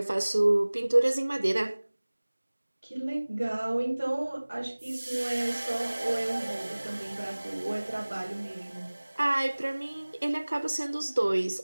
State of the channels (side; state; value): both; inverted; correlation -1.00